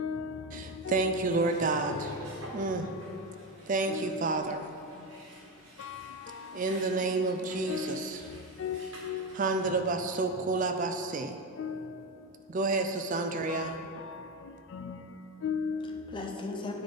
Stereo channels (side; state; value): both; normal; correlation 0.16